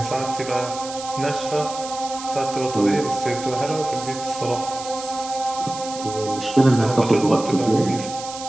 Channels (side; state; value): right; noise; hiss, 12 dB below the sound